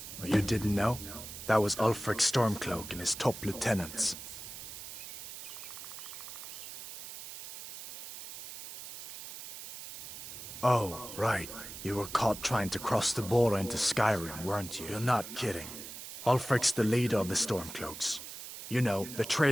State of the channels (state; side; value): noise; right; hiss, 10 dB below the sound